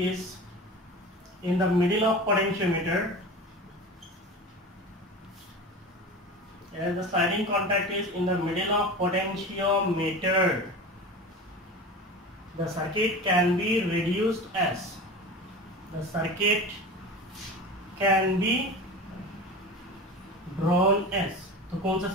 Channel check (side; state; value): both; normal; correlation 0.32